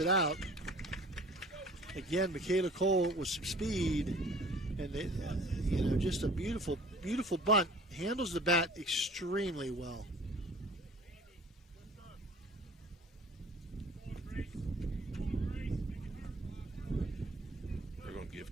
out. Again, Michaela Cole with some speed, and just a beautiful, beautiful bunt. Handles the bat extremely well. They're going to give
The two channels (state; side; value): normal; both; correlation 0.50